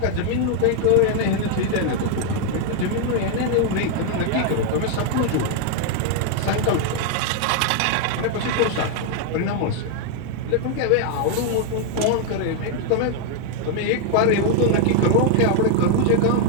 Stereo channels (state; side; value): different; both; correlation 0.00